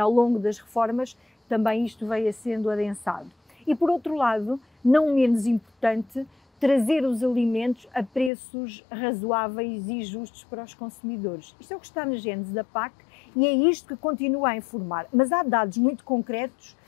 longo das reformas também isto veio sendo adensado. E por outro lado, não menos importante, trazer os alimentos a preços razoáveis e justos para os consumidores. Isto é o que está na gênese da PAC e é isto que continua a informar. Mas há dados muito concretos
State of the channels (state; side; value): drops out; right; at 8.3 s